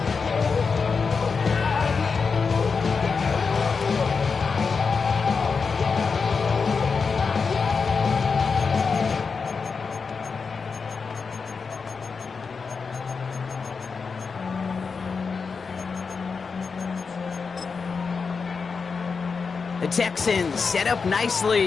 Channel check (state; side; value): quieter; right; 5.1 dB